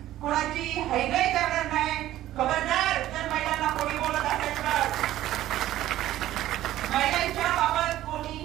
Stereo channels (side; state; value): left; quieter; 14.0 dB